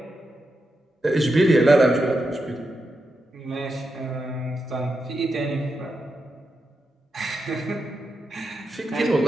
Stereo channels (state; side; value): normal; both; correlation 0.86